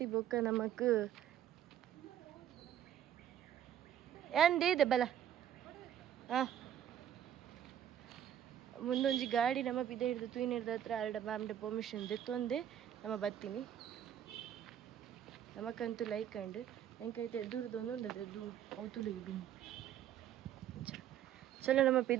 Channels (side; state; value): left; quieter; 10.5 dB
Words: ಬೊಕ್ಕ ನಮಕ್ ಏನ್ದೇದೆ ಬಲ ಮುಂದೊಂಜಿ ಗಾಡಿ ನಮ್ಮ ಪಿದ ಹಿಡ್ದು ತೂಯಿನ ಹಿಡ್ದ ಹತ್ರ ಅರ್ಡ ಮ್ಯಾಮ್ಡೆ ಪರ್ಮಿಷನ್ ದೆತ್ತೊಂದೆ ನಮ್ಮ ಬತ್ತೀನಿ ನಮಕ್ಕಂತೂ ಲೈಕ್ ಅಂಡ್ ಎಂಕೈತೆ ದೂರದೊಂದು ಉಂಡದೆ ದೂರ ಅವತುಲಿಗೆ ಡುಮ್ ಚಲೋ ನಮ್ಮ